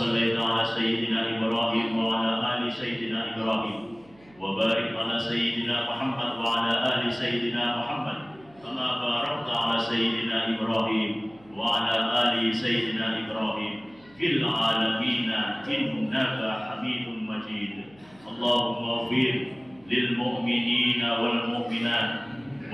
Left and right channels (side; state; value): right; noise; hum, 28 dB below the sound